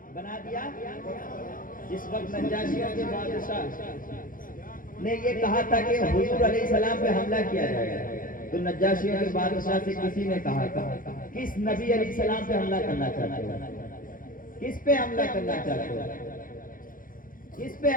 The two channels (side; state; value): right; late; 0.40 ms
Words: بنا دیا جس وقت نجاشیوں کے بادشاہ نے یہ کہا تھا کہ حضور علیہ السلام پہ حملہ کیا جائے تو نجاشیوں کے بادشاہ سے کسی نے کہا تھا کس نبی علیہ السلام پہ حملہ کرنا چاہتے ہو کس پہ حملہ کرنا چاہتے ہو کس پہ